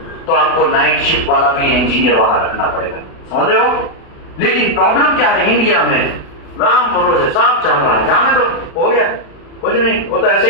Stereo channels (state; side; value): late; right; 36 ms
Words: तो आपको नाइट शिफ्ट वाला भी इंजीनियर वहां रखना पड़ेगा, समझ रहे हो? लेकिन प्रॉब्लम क्या है? इंडिया में राम भरोसे साफ चल रहा है, जाने दो, हो गया, कुछ नहीं होता, ऐसे